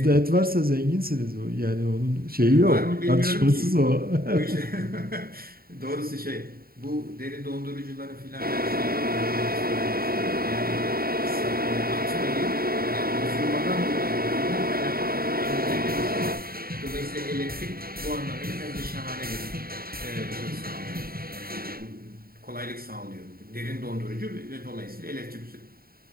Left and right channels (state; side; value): late; left; 0.43 ms